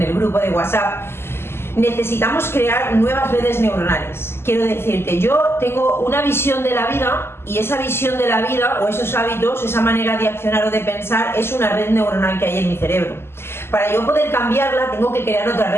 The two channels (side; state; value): right; late; 0.12 ms